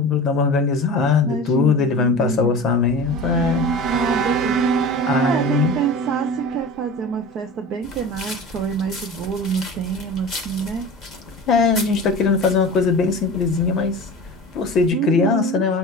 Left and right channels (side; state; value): both; normal; correlation 0.34